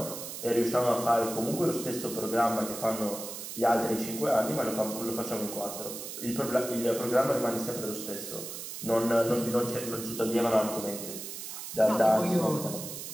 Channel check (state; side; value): noise; right; hiss, 8 dB below the sound